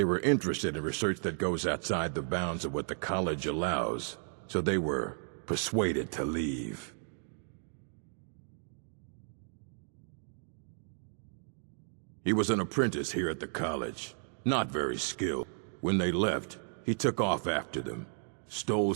were interested in research that goes outside the bounds of what the college allows, so they were persuaded to leave. He was an apprentice here at the college, not very skilled. When they left, he took off after them, stole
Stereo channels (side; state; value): left; silent; 55 dB below the other